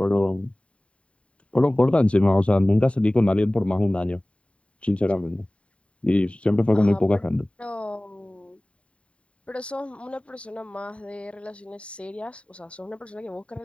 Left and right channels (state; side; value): late; right; 0.062 ms